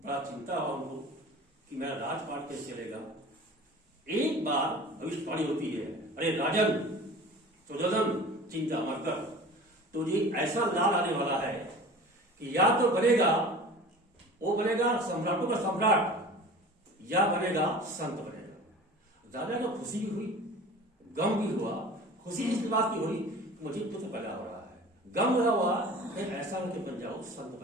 चिंता हुआ उनको कि मेरा राजपाट कैसे चलेगा। एक बार भविष्यवाणी होती है, अरे राजन सुजोधन चिंता मत कर, तुझे ऐसा लाल आने वाला है कि या तो बनेगा वो बनेगा सम्राटों का सम्राट, या बनेगा संत बनेगा। राजा को खुशी भी हुई, गम भी हुआ। खुशी इस बात की हुई मुझे पुत्र पैदा हो रहा है, गम हुआ ऐसा होकर बन जाओ, संत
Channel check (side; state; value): both; normal; correlation 0.40